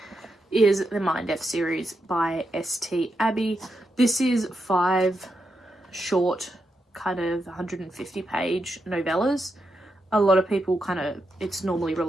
is the Mind F series by S.T. Abbey. This is 5 short, kind of 150-page novellas. A lot of people it's normally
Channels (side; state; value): both; normal; correlation 0.84